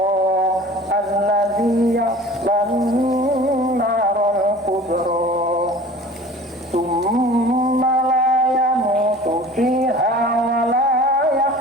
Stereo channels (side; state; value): both; normal; correlation 0.43